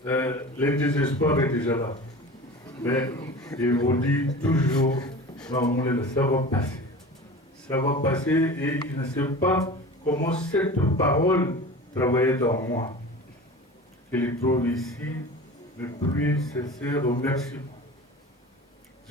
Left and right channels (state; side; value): normal; both; correlation 0.36